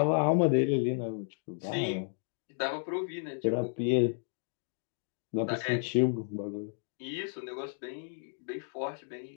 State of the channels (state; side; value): silent; right; digital silence